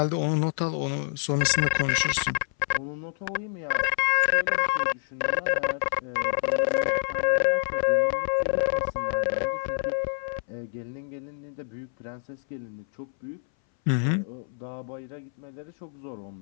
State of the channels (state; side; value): silent; right; 59 dB below the other